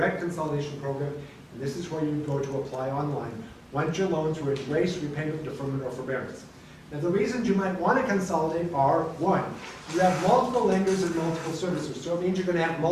Consolidation Program, and this is where you would go to apply online once your loans were in race, repayment, deferment, or forbearance. Now, the reasons you might want to consolidate are, one, you have multiple lenders and multiple servicers, so it means you're going to have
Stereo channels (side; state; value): both; identical; correlation 1.00